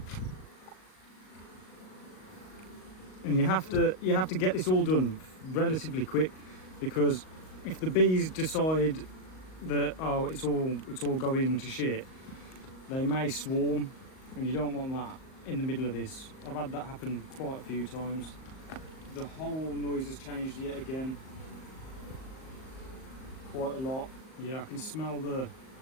And you have to get this all done relatively quick, because if the bees decide that, oh, it's all going to shit, they may swarm, and you don't want that in the middle of this. I've had that happen quite a few times. The whole noise has changed yet again, quite a lot. Yeah, I can smell the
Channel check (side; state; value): right; late; 38 ms